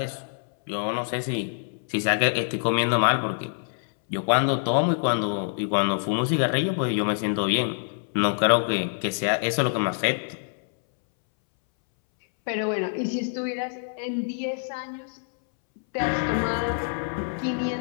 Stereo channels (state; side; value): silent; right; 61 dB below the other